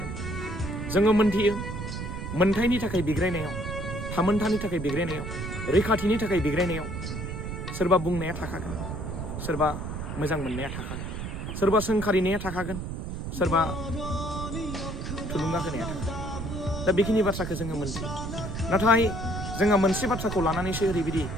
जोङो मोनथियो मोनथायनि थाखाय बिग्रायनायाव थामोन्थानि थाखाय बिग्रायनायाव रैखाथिनि थाखाय बिग्रायनायाव सोरबा बुंनाया थाखागोन सोरबा मोजां मोननाया थाखागोन सोरबा सोंखारिनाया थाखागोन सोरबा थुलुंगा होनाया थाखागोन दा बेखिनि बाथ्राखौ जोङो मोनथियो नाथाय जोंहा मोनसे बाथ्राखौ लानानैसो ओरैबायदि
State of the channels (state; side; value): noise; right; rumble, 6 dB below the sound